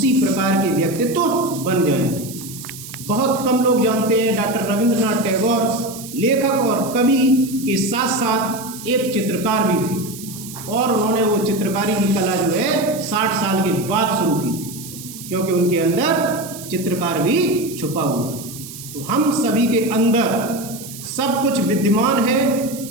प्रकार के व्यक्तित्व बन जाएं। बहुत कम लोग जानते हैं डॉक्टर रविंद्रनाथ टैगोर लेखक और कवि के साथ साथ एक चित्रकार भी थे और उन्होंने वो चित्रकारी की कला जो है 60 साल के बाद शुरू की थी, क्योंकि उनके अंदर चित्रकार भी छुपा हुआ। तो हम सभी के अंदर सब कुछ विद्यमान है,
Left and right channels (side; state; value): right; noise; hiss, 13 dB below the sound